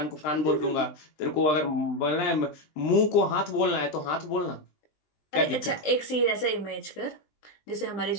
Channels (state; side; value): late; right; 20 ms